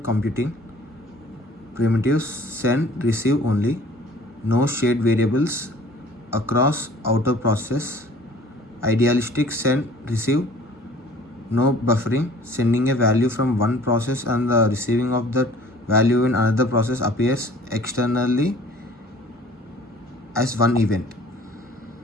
computing. Primitives send receive only. No shared variables across outer process. Idealistic send receive. No buffering. Sending a value from one process and the receiving of that value in another process appears externally as one event.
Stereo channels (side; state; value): both; normal; correlation 0.50